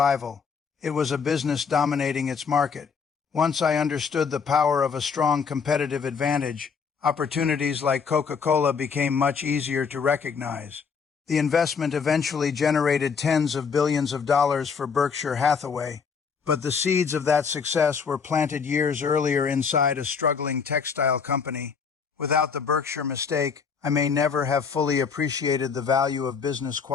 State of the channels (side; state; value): right; quieter; 6.0 dB